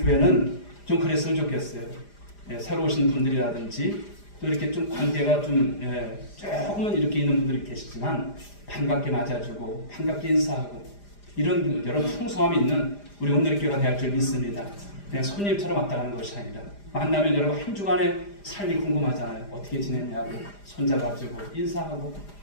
교회는 좀 그랬으면 좋겠어요. 새로 오신 분들이라든지 또 이렇게 좀 관계가 좀 조금은 이렇게 있는 분들이 계시지만 반갑게 맞아주고 반갑게 인사하고 이런 여러 풍성함이 있는 우리 오늘의 교회가 될 줄 믿습니다. 그냥 손님처럼 왔다 가는 것이 아니라 만나면 여러분 한 주간의 삶이 궁금하잖아요. 어떻게 지냈냐고 손잡아주고 인사하고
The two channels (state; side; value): late; right; 4.9 ms